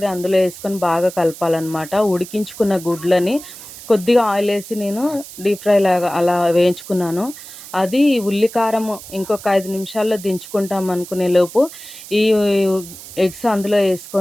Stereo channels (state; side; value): noise; right; hiss, 15 dB below the sound